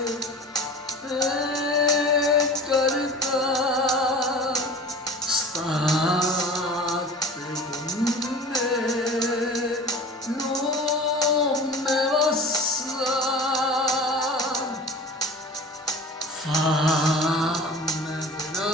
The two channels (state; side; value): normal; both; correlation 0.38